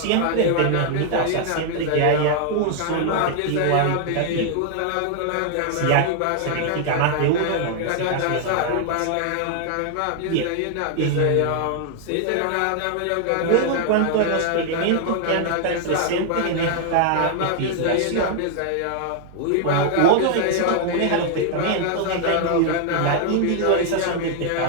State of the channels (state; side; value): different; both; correlation 0.00